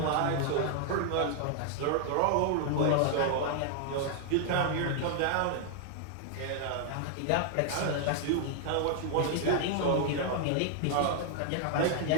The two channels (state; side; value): different; both; correlation 0.00